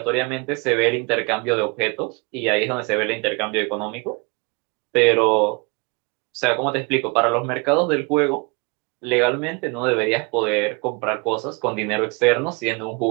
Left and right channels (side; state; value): left; quieter; 29.9 dB